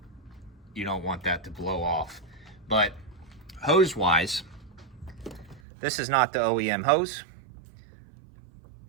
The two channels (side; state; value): left; drops out; at 5.6 s